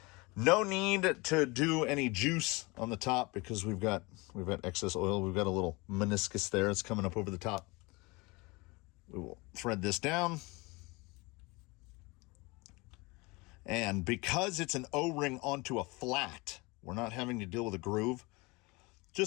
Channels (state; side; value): quieter; right; 25.1 dB